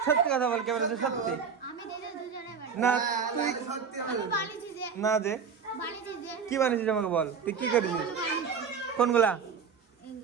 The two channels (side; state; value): left; quieter; 6.3 dB